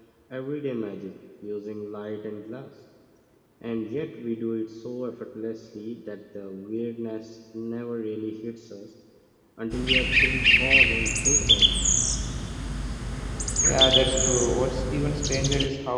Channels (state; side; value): identical; both; correlation 1.00